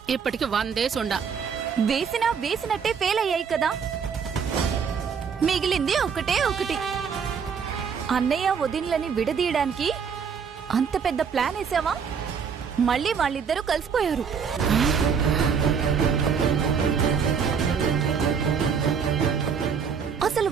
ఇప్పటికి 100 డేస్ ఉండా. వేసినట్టే ఫెయిల్ అయ్యాయి కదా. మిగిలింది ఒకటే ఒకటి. అన్నయ్య వదినలని విడదీయడానికి అంత పెద్ద ప్లాన్ వేసావా? మళ్ళీ వాళ్ళిద్దరూ కలిసిపోయారు. అసలు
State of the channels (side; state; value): left; quieter; 6.5 dB